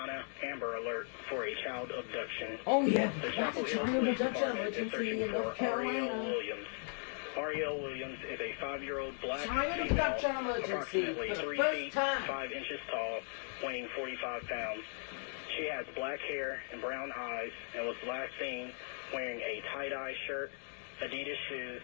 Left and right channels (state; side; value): silent; right; 53 dB below the other